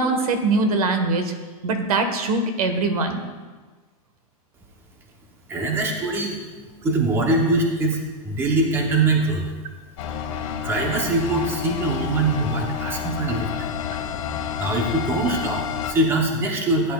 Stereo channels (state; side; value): normal; both; correlation 0.05